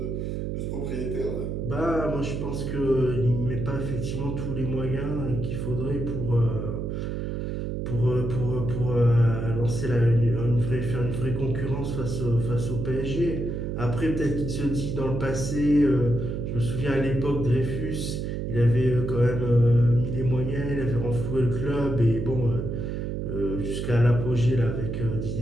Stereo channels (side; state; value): right; noise; hum, 3 dB below the sound